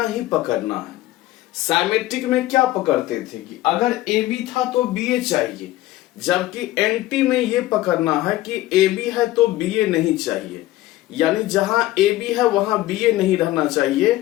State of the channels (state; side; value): quieter; right; 16.2 dB